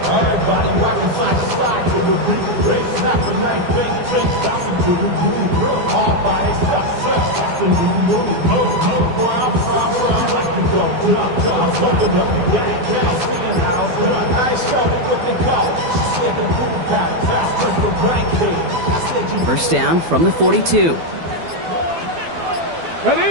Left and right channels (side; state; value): left; late; 12 ms